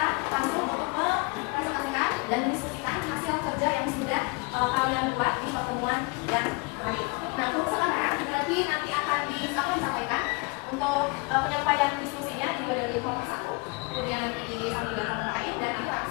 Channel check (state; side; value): quieter; right; 28.6 dB